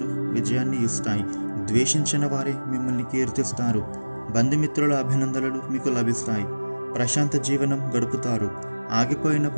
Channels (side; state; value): both; inverted; correlation -1.00